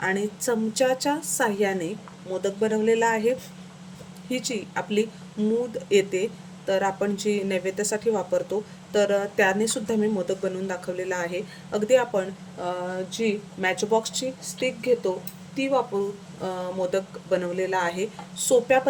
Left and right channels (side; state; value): both; identical; correlation 1.00